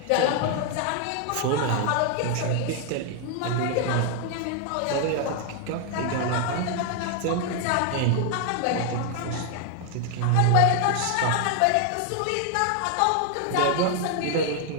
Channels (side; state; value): both; different; correlation 0.00